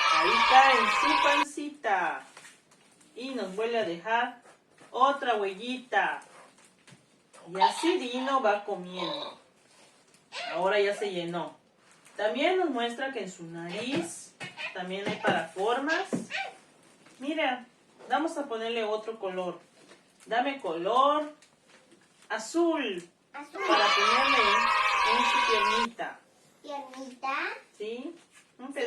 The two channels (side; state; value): both; identical; correlation 1.00